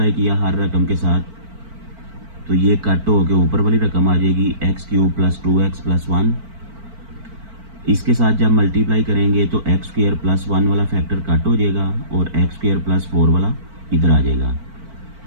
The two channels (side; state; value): left; late; 4.5 ms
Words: किया हर रकम के साथ, तो ये कट हो के ऊपर वाली रकम आ जाएगी x³ + 2x + 1। इसके साथ जब मल्टीप्लाई करेंगे तो x² + 1 वाला फैक्टर कट हो जाएगा और x² + 4 वाला इधर आ जाएगा।